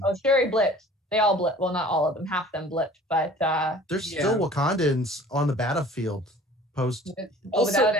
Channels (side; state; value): both; normal; correlation 0.47